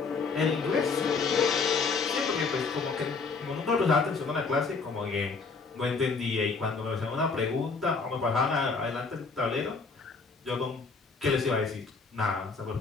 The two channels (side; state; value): right; quieter; 4.6 dB